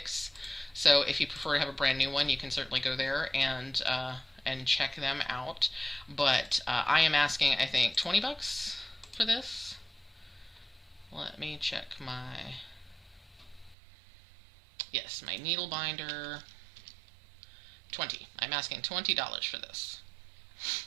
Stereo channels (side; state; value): left; drops out; at 13.8 s